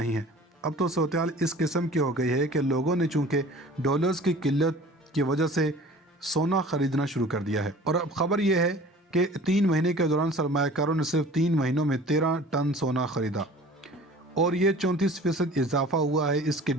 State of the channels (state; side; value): normal; both; correlation 0.45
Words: है, अब तो सूरत हाल इस किस्म की हो गई है कि लोगों ने चूँकि डॉलर्स की किल्लत की वजह से सोना ख़रीदना शुरू कर दिया है। और अब ख़बर यह है कि 3 महीने के दौरान सरमायाकारों ने सिर्फ 3 महीनों में 13 टन सोना ख़रीदा, और ये 34% इजाफा हुआ है। इसकी